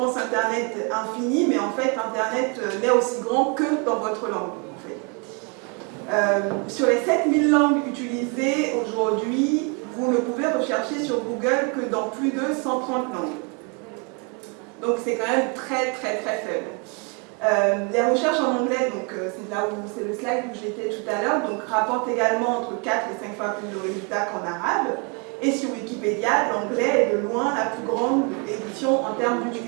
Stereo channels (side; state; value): left; quieter; 34.5 dB